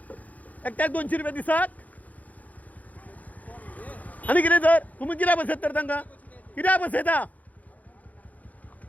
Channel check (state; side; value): late; right; 0.076 ms